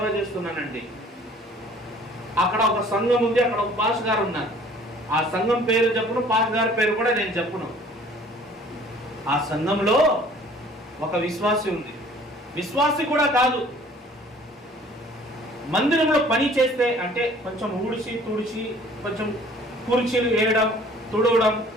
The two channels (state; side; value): normal; both; correlation 0.53